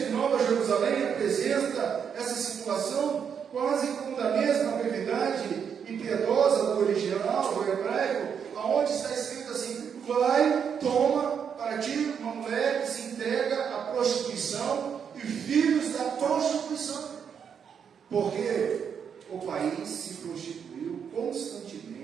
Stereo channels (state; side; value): quieter; left; 7.3 dB